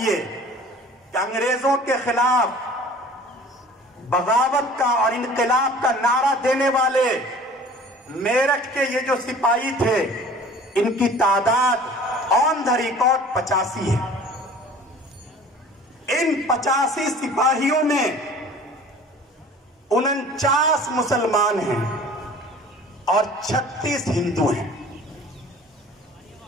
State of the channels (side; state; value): both; normal; correlation 0.46